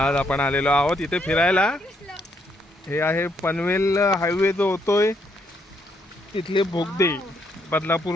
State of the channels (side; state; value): both; normal; correlation 0.73